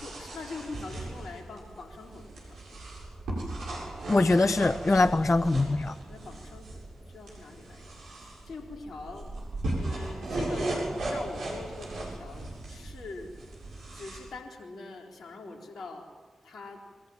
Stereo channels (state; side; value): normal; both; correlation 0.93